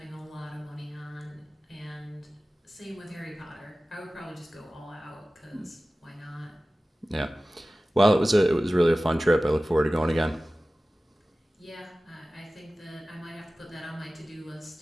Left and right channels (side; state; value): both; normal; correlation 0.97